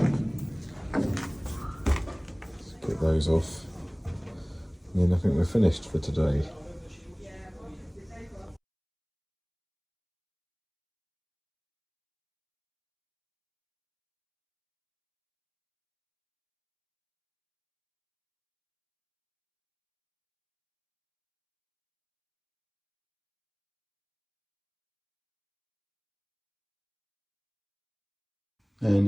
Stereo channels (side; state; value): both; identical; correlation 1.00